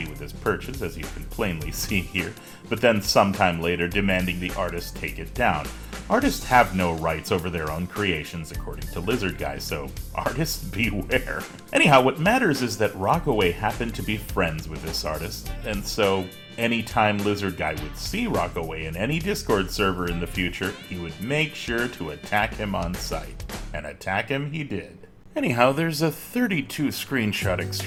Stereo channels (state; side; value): identical; both; correlation 1.00